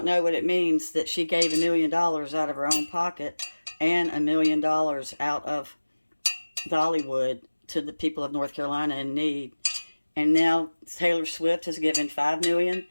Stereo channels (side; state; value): both; inverted; correlation -1.00